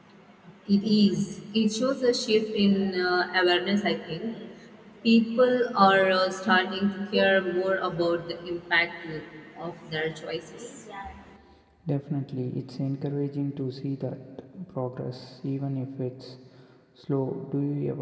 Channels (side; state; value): both; identical; correlation 1.00